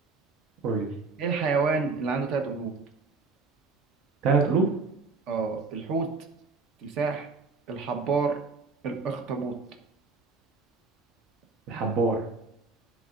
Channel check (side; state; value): left; quieter; 4.2 dB